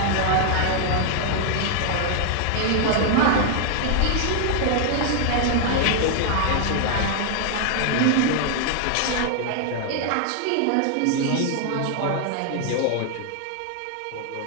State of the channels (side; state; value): both; different; correlation 0.00